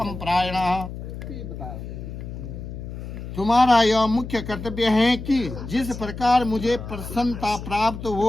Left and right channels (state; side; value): noise; left; hum, 9 dB below the sound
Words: प्रायणः। तुम्हारा यह मुख्य कर्तव्य है कि जिस प्रकार मुझे प्रसन्नता प्राप्त